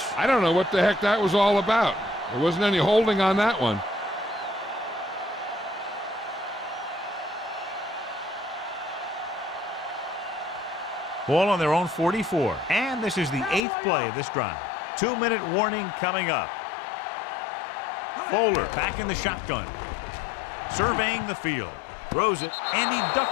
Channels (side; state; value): right; drops out; at 13.6 s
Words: I don't know what the heck that was all about. There wasn't any holding on that one. Ball on their own 44. And this is the 8th play of this drive. 2-minute warning coming up. Fowler back in the shotgun. Surveying the field, throws it, and he